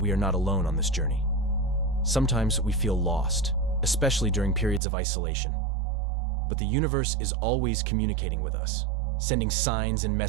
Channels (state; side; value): drops out; left; at 4.8 s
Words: are not alone on this journey. Sometimes we feel lost, especially during periods of isolation. But the universe is always communicating with us, sending signs and